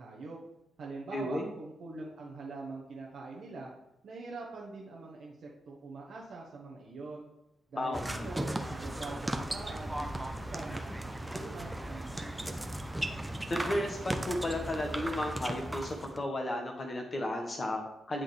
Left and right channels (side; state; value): both; normal; correlation 0.89